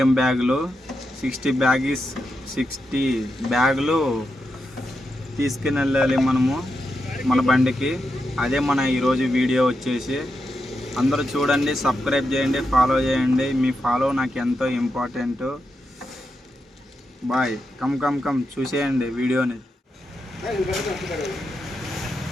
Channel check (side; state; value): both; normal; correlation 0.86